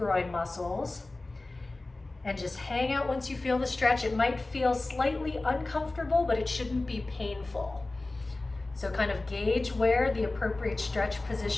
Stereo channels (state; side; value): quieter; right; 3.0 dB